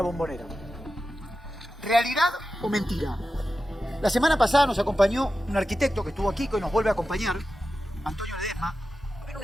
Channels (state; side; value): normal; both; correlation 0.92